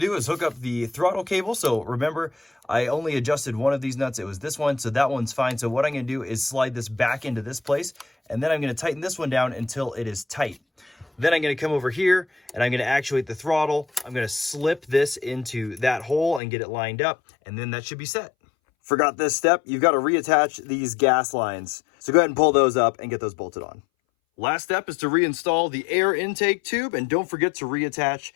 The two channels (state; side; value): drops out; right; at 16.4 s